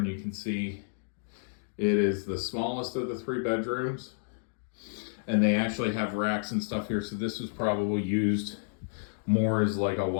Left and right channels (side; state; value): right; silent; digital silence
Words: you can see it is the smallest of the 3 bedrooms. And they actually have racks and stuff here, so this was probably used more as like a